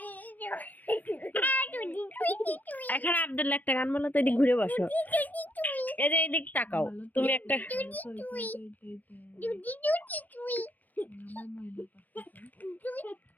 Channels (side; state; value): right; late; 0.082 ms